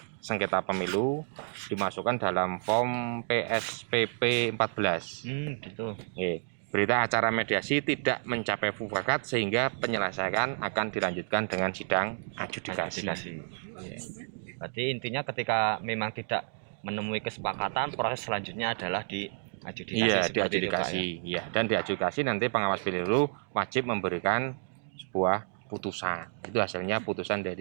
sengketa pemilu, dimasukkan dalam form PSPP 14. Gitu. Berita acara mediasi tidak mencapai mufakat sehingga penyelesaian akan dilanjutkan dengan sidang adjudikasi. Berarti intinya ketika memang tidak menemui kesepakatan, proses selanjutnya adalah di adjudikasi. Iya, di adjudikasi. Iya, dan di adjudikasi nanti pengawas pemilu wajib memberikan sebuah putusan. Itu hasilnya putusan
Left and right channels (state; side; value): silent; left; digital silence